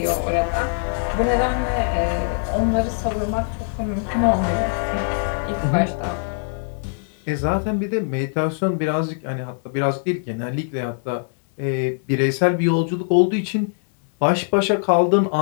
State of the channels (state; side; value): silent; right; digital silence